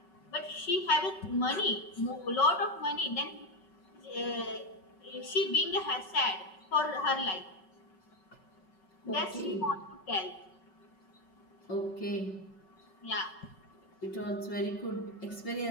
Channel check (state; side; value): late; right; 5.3 ms